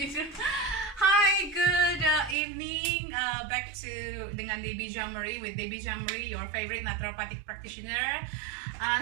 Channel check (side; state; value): left; drops out; at 2.4 s